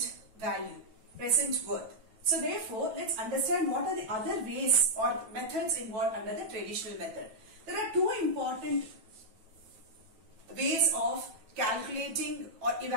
value. Present worth. So therefore, let's understand what are the other ways or methods involved under the traditional method. There are two important ways of calculating or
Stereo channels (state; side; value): late; left; 9.1 ms